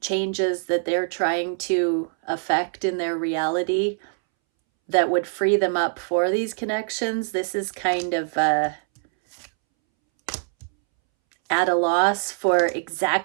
changes that they're trying to affect in their reality that would free them up for these connections. This is kind of at a loss for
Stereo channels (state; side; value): silent; left; 63 dB below the other